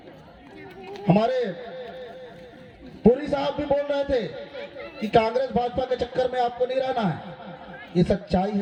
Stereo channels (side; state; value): both; identical; correlation 1.00